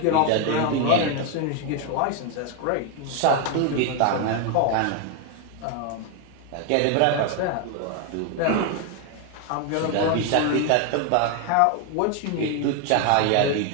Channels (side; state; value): both; different; correlation 0.01